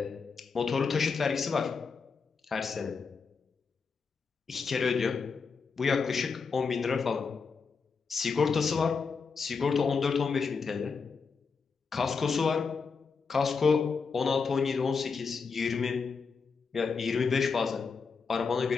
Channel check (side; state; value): right; quieter; 5.2 dB